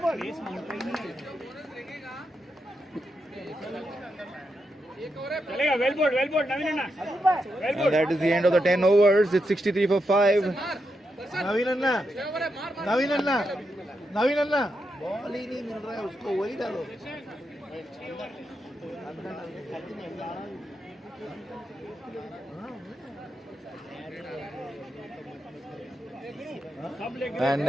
Well ball, Naveen Anna. And that is the end of the 10 overs. It's 63 for 5. Naveen anna ball ही नहीं मिल रहा है उसको, वही डालो. And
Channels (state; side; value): normal; both; correlation 0.85